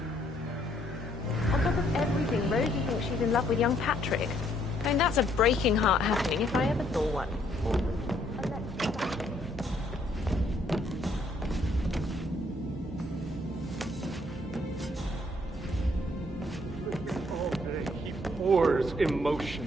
On top of everything, Rosie thinks she's in love with young Patrick. I mean, that's a breaking heart happening if I ever saw one. He pours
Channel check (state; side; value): normal; both; correlation 0.68